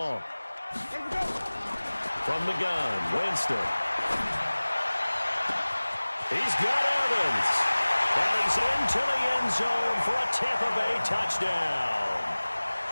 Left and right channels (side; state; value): both; inverted; correlation -1.00